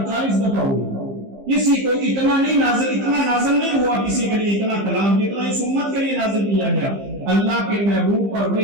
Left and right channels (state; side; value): late; left; 15 ms